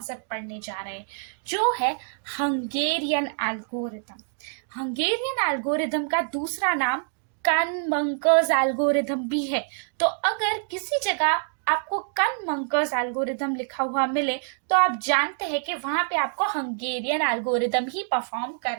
पढ़ने जा रहे हैं, जो है हंगेरियन एल्गोरिथम। हंगेरियन एल्गोरिथम का दूसरा नाम कन-मंकर्स एल्गोरिथम भी है। तो अगर किसी जगह आपको कन-मंकर्स एल्गोरिथम लिखा हुआ मिले तो आप जानते हैं कि वहां पे आपको हंगेरियन एल्गोरिथम ही परफॉर्म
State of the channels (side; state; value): left; silent; digital silence